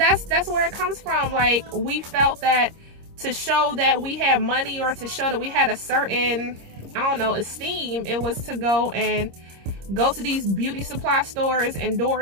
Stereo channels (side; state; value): left; late; 26 ms